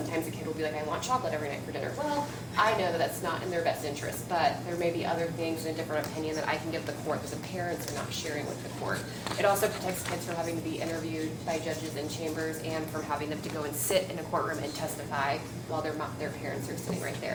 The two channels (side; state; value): both; identical; correlation 1.00